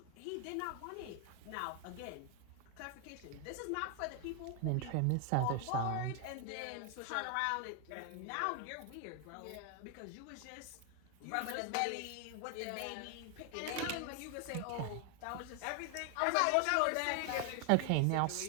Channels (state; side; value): different; both; correlation 0.00